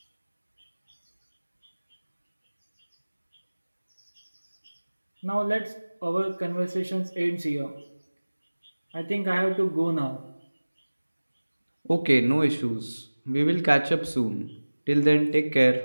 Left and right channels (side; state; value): both; inverted; correlation -1.00